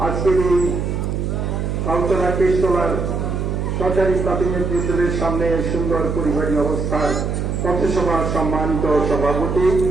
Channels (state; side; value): noise; right; hum, 2 dB below the sound